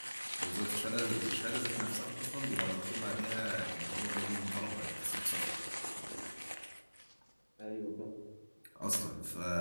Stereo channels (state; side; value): inverted; both; correlation -1.00